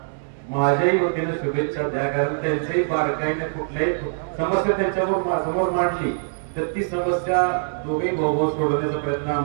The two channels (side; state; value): left; silent; digital silence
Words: माझ्याही वतीने शुभेच्छा द्या. कारण त्यांच्याही बारकाईने कुठल्याही समस्या त्यांच्यावर समोर मांडली तर ती समस्या दोघे भाऊ सोडवण्याचा प्रयत्न